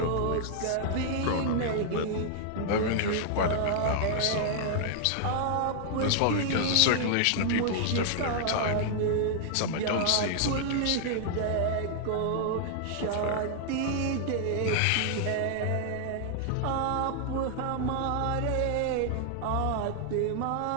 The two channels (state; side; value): different; both; correlation -0.01